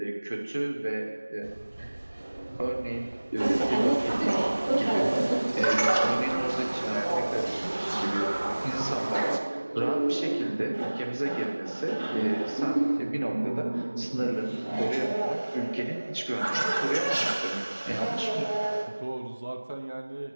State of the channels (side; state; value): both; inverted; correlation -1.00